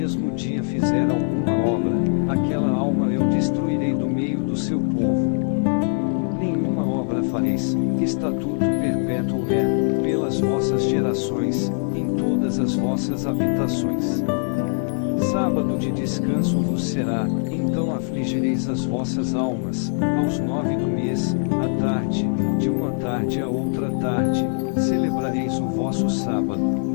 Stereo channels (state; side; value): silent; right; 64 dB below the other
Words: dia fizer alguma obra, aquela alma eu destruirei do meio do seu povo. Nenhuma obra fareis, estatuto perpétuo é, pelas vossas gerações, em todas as vossas habitações. Sábado de descanso vos será, então afligireis as vossas almas, aos 9 do mês, à tarde, de uma tarde a outra tarde, celebrareis o vosso sábado.